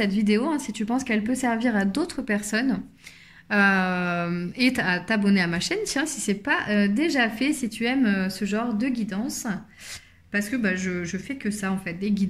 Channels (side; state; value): both; identical; correlation 1.00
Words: vidéo hein, si tu penses qu'elle peut servir à d'autres personnes. Et à t'abonner à ma chaîne, tiens, si ce n'est pas déjà fait, si tu aimes ce genre de guidance. Parce que je fais que ça en fait, des